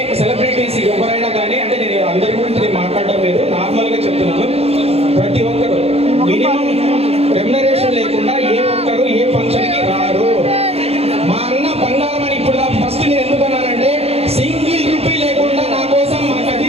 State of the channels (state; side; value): late; left; 0.29 ms